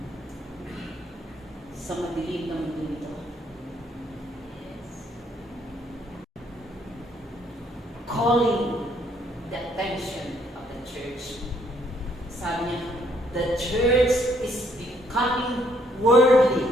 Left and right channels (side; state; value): both; normal; correlation 0.68